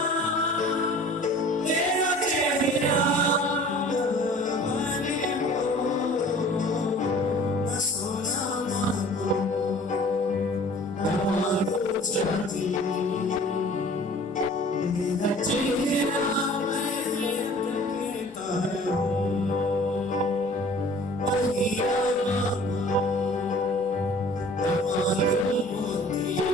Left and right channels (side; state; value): both; normal; correlation 0.48